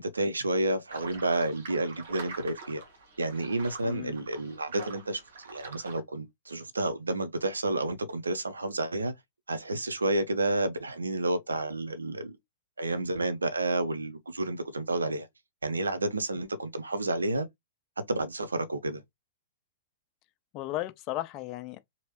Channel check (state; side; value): inverted; both; correlation -0.77